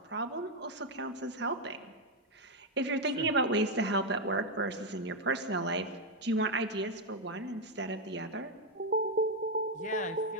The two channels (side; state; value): both; normal; correlation 0.03